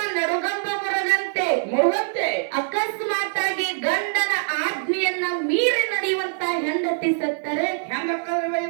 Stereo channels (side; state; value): left; silent; 63 dB below the other